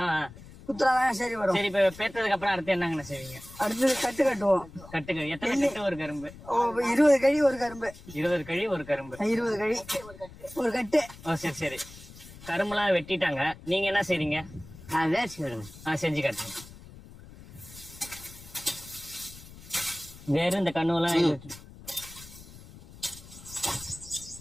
குத்துறாதான் சரி வரும். சரி, இப்ப பேத்ததுக்கு அப்புறம் அடுத்து என்னங்கண்ணா செய்வீங்க? அடுத்தது கட்டு கட்டுவோம். கட்டுங்க. எத்தனை கட்டு ஒரு கரும்பு? 20 கழி ஒரு கரும்பு. 20 கழி ஒரு கரும்பு. 20 கழி ஒரு கட்டு. சரி சரி. கரும்புலாம் வெட்டிட்டாங்க, நீங்க என்ன செய்றீங்க? வேர்ச்சி விடுங்க. செஞ்சு காட்டுங்க. வேற இந்த கண்ணுலாம்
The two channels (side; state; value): left; noise; rumble, 18 dB below the sound